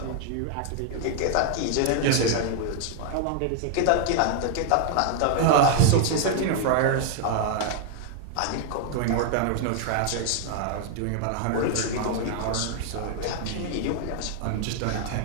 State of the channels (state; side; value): different; both; correlation 0.00